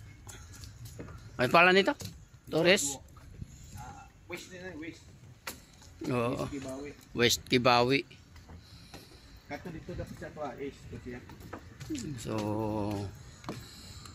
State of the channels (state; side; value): identical; both; correlation 1.00